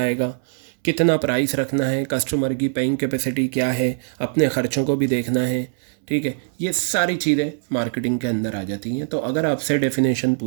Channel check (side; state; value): left; silent; 64 dB below the other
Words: कितना प्राइस रखना है, कस्टमर की पेइंग कैपेसिटी क्या है, अपने ख़र्चों को भी देखना है। ठीक है, ये सारी चीज़ें मार्केटिंग के अंदर आ जाती हैं। तो अगर आपसे डेफिनेशन